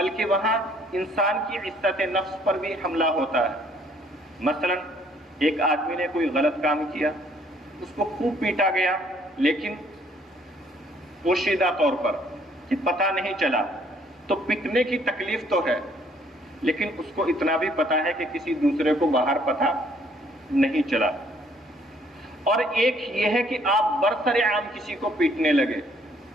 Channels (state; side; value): normal; both; correlation 0.63